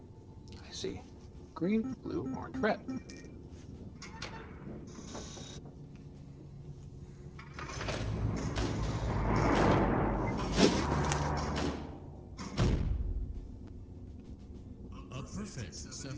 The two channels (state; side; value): identical; both; correlation 1.00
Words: I see. Green, blue, orange, red. A perfect